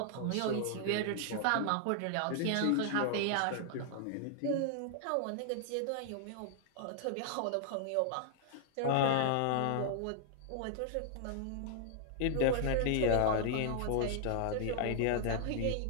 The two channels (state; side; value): different; both; correlation 0.00